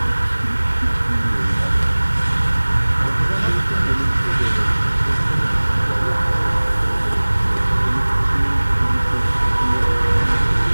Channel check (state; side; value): inverted; both; correlation -1.00